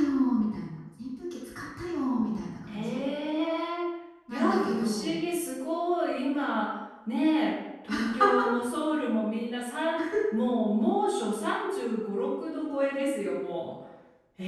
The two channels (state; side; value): identical; both; correlation 1.00